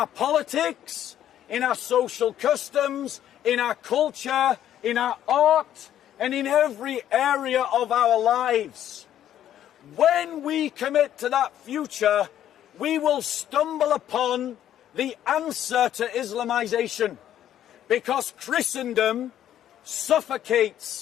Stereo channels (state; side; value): quieter; right; 11.2 dB